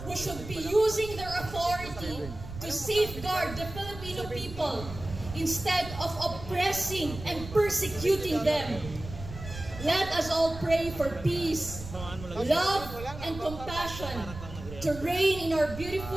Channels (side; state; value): right; noise; rumble, 11 dB below the sound